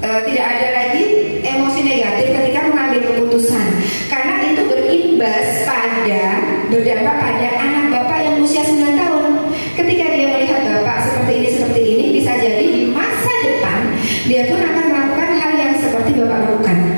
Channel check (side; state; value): both; inverted; correlation -1.00